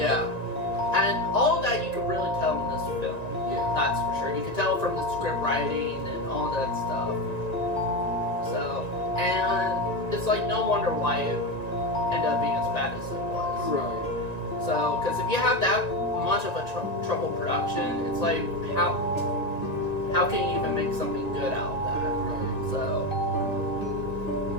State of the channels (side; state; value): right; late; 1.9 ms